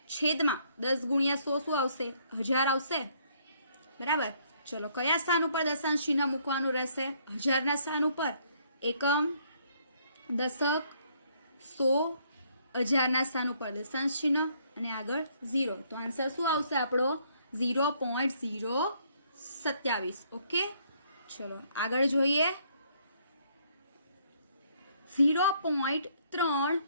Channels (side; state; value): both; inverted; correlation -0.67